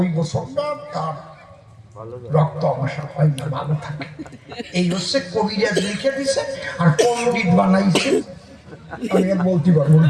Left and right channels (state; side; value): identical; both; correlation 1.00